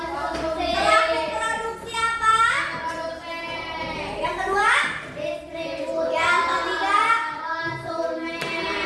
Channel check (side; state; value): both; identical; correlation 1.00